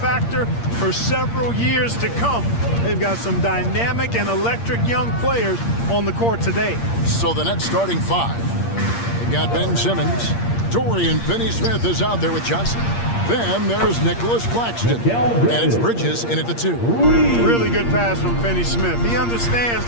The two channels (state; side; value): late; right; 8.6 ms